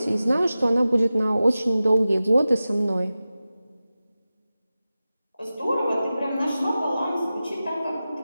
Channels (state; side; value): inverted; both; correlation -0.95